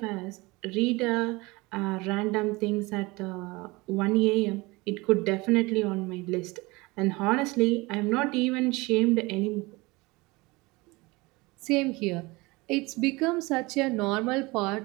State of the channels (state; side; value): quieter; left; 23.4 dB